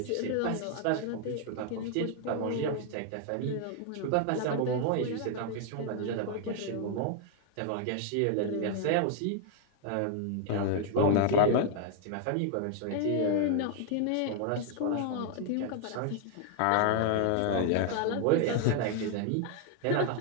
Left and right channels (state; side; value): different; both; correlation 0.00